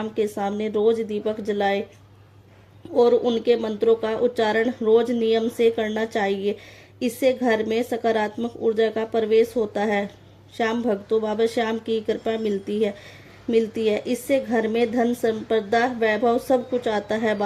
के सामने रोज दीपक जलाए और उनके मंत्रों का उच्चारण रोज नियम से करना चाहिए। इससे घर में सकारात्मक ऊर्जा का प्रवेश होता है। श्याम भक्तों, बाबा श्याम की कृपा मिलती है। इससे घर में धन, संपदा, वैभव सब कुछ आता है।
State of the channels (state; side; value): identical; both; correlation 1.00